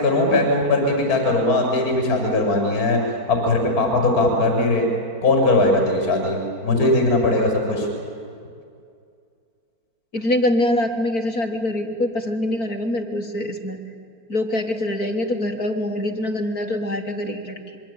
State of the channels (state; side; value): late; right; 4.5 ms